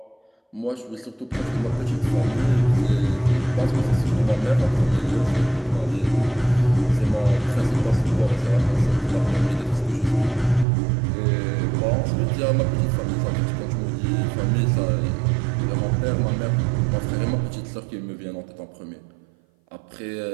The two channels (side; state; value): left; drops out; at 10.7 s